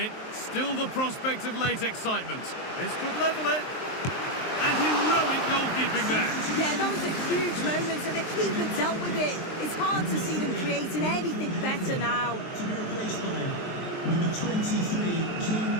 Still the prospect of late excitement. This could level it. And heroic goalkeeping there. Yeah, that was a huge moment, and the keeper dealt with it. It's hard to see them creating anything better now. To be replaced by number 23, King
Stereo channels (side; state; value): right; late; 23 ms